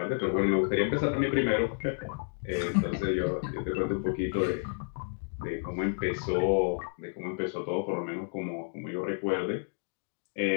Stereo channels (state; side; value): silent; right; digital silence